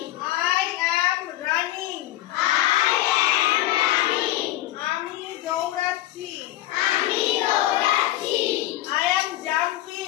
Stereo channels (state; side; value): quieter; right; 15.0 dB